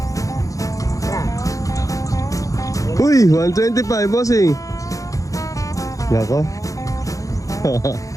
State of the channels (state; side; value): late; right; 0.16 ms